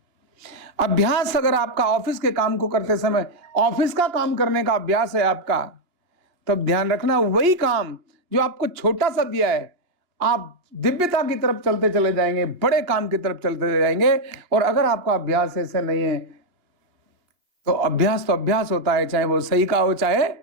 अभ्यास अगर आपका ऑफिस के काम को करते समय ऑफिस का काम करने का अभ्यास है आपका, तब ध्यान रखना वही काम जो आपको छोटा सा दिया है, आप दिव्यता की तरफ चलते चले जाएंगे, बड़े काम की तरफ चलते चले जाएंगे। और अगर आपका अभ्यास ऐसे नहीं है तो अभ्यास होता है, चाहे वो सही का हो चाहे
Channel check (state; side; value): late; left; 2.8 ms